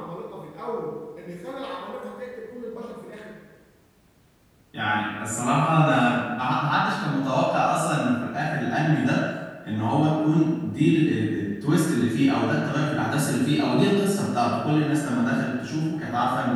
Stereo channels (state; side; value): identical; both; correlation 1.00